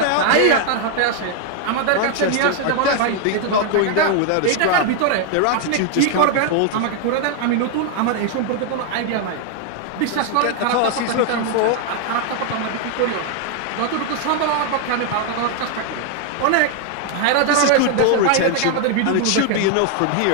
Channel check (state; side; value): different; both; correlation 0.00